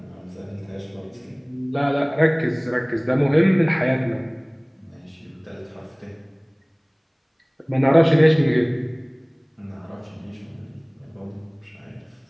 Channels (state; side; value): identical; both; correlation 1.00